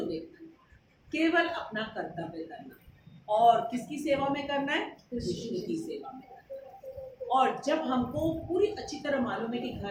देखना? केवल अपना कर्तव्य करना। और किसकी सेवा में करना है? कृष्ण की सेवा में। और जब हमको पूरी अच्छी तरह मालूम है कि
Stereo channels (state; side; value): identical; both; correlation 1.00